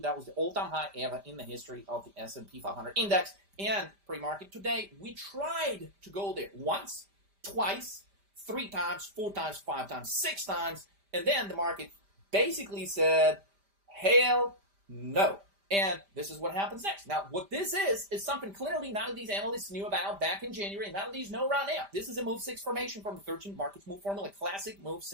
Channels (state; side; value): late; left; 5.0 ms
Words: That was the all-time high ever in the history of the S&P 500 index. And pre-market today, we tried to go there once, twice, 3 times, 4 times, 5 times, 6 times, and then the market basically said, hell no. And this is what happens next. Now, what this is something clearly none of these analysts knew about back in January, and none of these know right now. This is a Move 6 formation from the 13 Markets Move Formula, classic Move